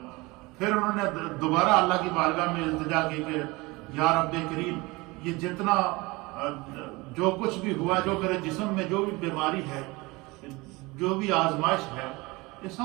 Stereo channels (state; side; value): quieter; left; 23.6 dB